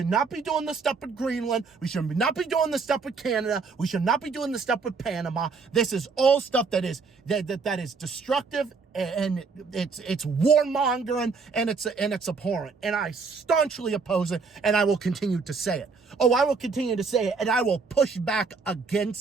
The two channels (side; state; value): left; quieter; 4.7 dB